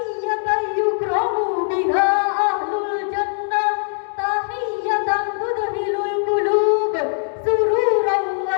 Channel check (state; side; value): silent; right; digital silence